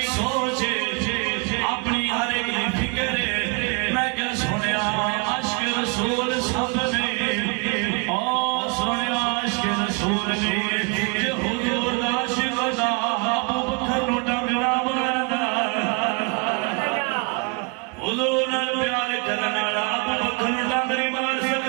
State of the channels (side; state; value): left; quieter; 31.5 dB